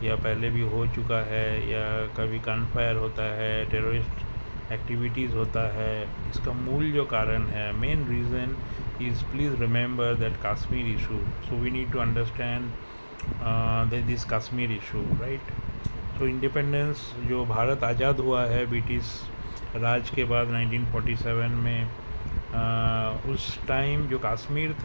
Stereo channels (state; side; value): inverted; both; correlation -1.00